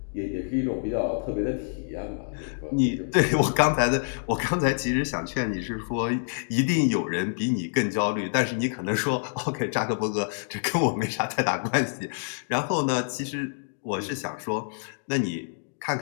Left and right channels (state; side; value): silent; right; digital silence